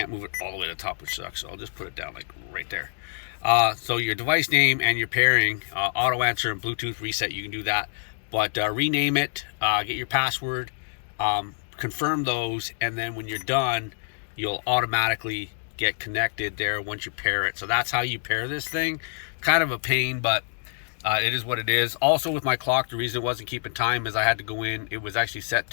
move it all the way to the top, which sucks, so I'll just put it down like right there. So your device name and your pairing, auto answer and Bluetooth reset, you can do that. But rename it, get your password, confirm those, and then when you're done, you'll automatically get connected there once you pair it. So that's how you pair this thing. Kind of a pain, but it is what it is. Also with my clock, the reason it wasn't keeping time is I had to go in. It was actually set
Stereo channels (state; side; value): silent; right; digital silence